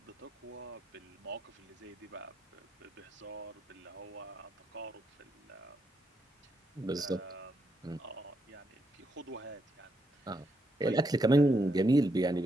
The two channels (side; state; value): both; normal; correlation 0.80